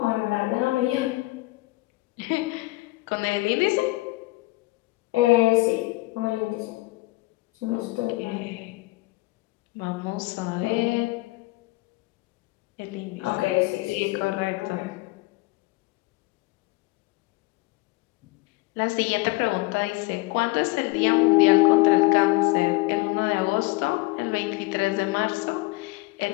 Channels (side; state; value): right; quieter; 22.0 dB